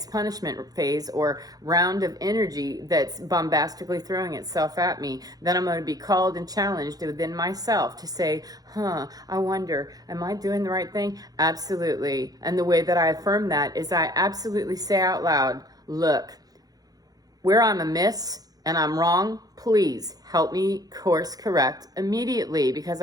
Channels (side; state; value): left; late; 0.18 ms